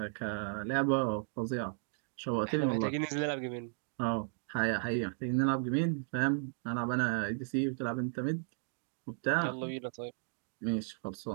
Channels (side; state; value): left; silent; digital silence